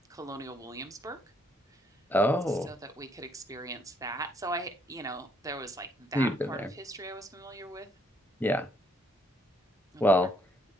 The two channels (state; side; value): normal; both; correlation 0.69